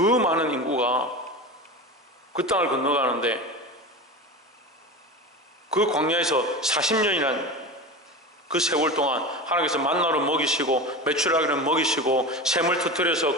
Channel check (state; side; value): normal; both; correlation 0.27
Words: 인구가 그 땅을 건너가는데, 그 광야에서 40년이란 그 세월 동안 하나님께서 만나로 먹이시고 메추라기를 먹이시고 샘을 터뜨려서